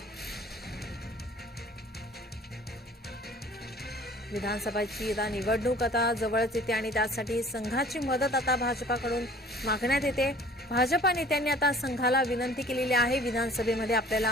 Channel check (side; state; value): both; normal; correlation 0.50